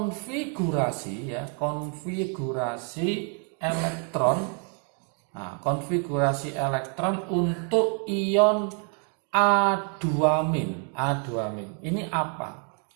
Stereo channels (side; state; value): left; quieter; 38.6 dB